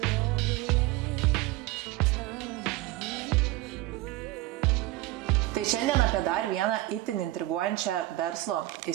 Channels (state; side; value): quieter; left; 17.8 dB